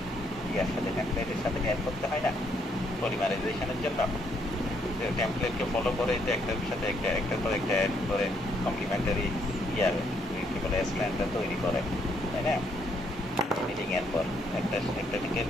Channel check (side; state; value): both; normal; correlation 0.72